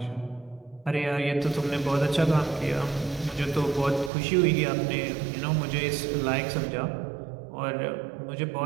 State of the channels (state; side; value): drops out; left; at 4.1 s